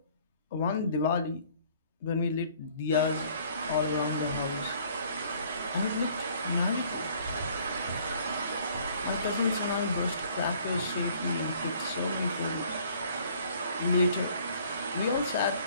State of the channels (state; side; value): inverted; both; correlation -0.58